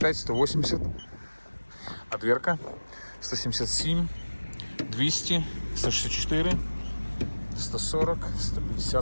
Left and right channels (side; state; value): both; inverted; correlation -1.00